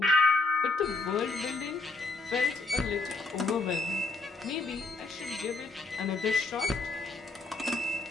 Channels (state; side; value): quieter; right; 3.5 dB